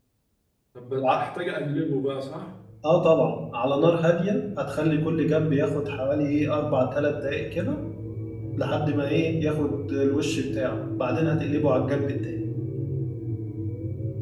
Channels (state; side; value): identical; both; correlation 1.00